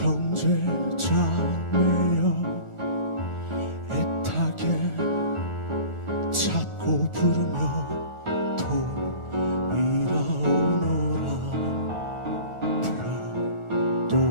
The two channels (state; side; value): late; right; 1.4 ms